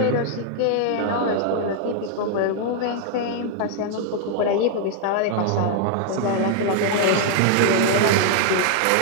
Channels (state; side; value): different; both; correlation 0.00